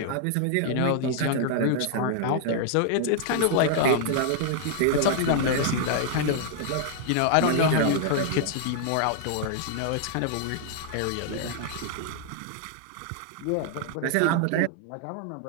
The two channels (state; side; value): different; both; correlation 0.00